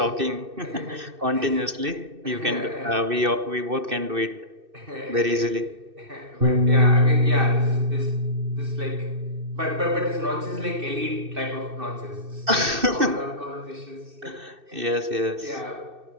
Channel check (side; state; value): left; late; 2.6 ms